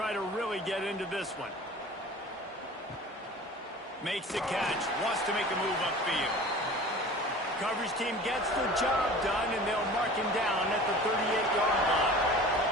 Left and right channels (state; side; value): normal; both; correlation 0.41